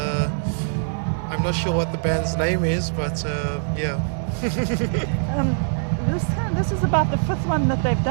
I'm not sure what the band's name is, but yeah. This is about the fifth one that they've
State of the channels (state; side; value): silent; left; 64 dB below the other